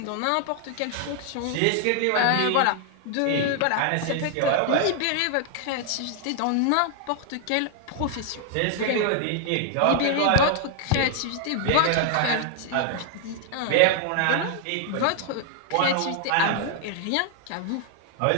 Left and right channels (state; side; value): different; both; correlation 0.00